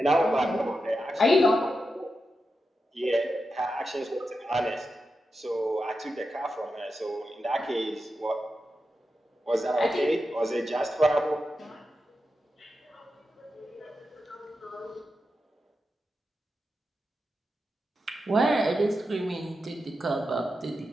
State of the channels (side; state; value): both; normal; correlation 0.89